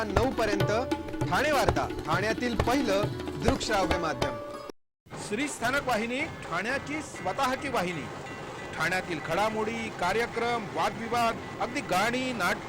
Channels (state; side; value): identical; both; correlation 1.00